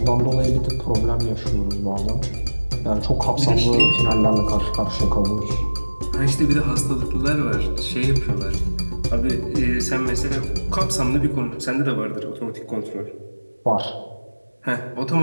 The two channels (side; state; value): both; inverted; correlation -1.00